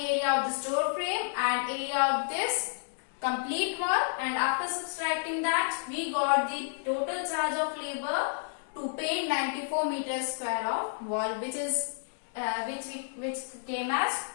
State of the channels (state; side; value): silent; right; digital silence